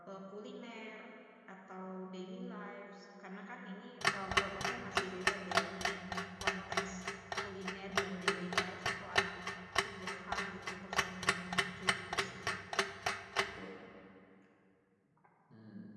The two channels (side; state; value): both; identical; correlation 1.00